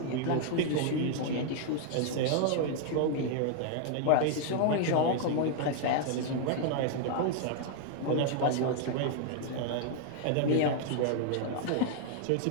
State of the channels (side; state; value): both; different; correlation 0.00